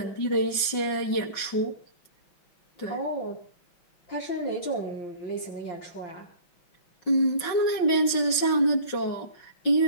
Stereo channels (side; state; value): right; late; 5.5 ms